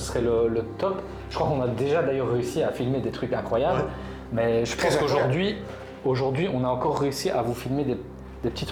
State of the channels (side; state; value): both; identical; correlation 1.00